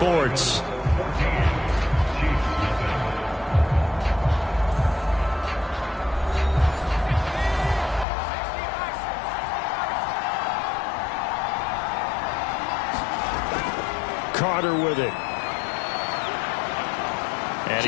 Carter with it. And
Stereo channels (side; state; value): right; drops out; at 8.1 s